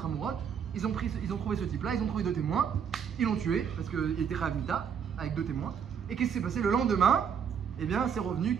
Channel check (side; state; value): left; quieter; 7.5 dB